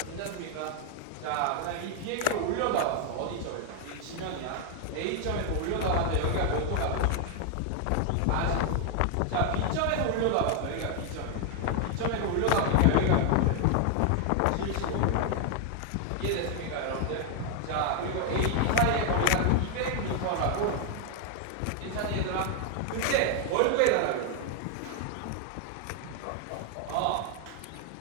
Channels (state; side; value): different; both; correlation 0.00